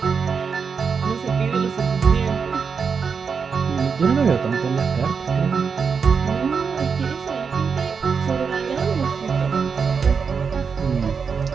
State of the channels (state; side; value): quieter; left; 5.8 dB